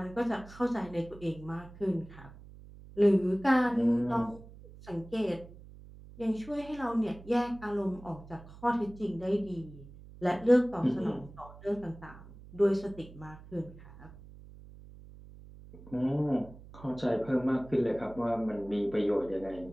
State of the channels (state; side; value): noise; right; hum, 18 dB below the sound